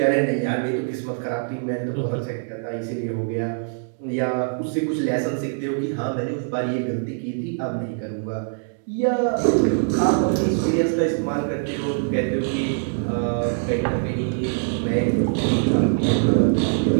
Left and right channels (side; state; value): left; silent; digital silence